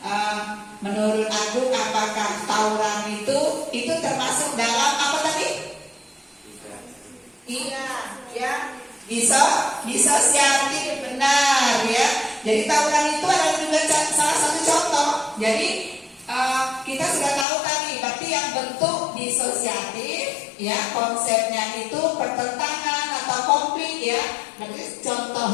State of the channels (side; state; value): right; drops out; at 17.4 s